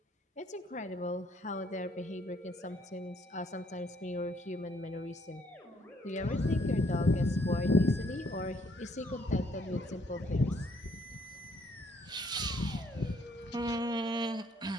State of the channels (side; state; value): both; normal; correlation 0.67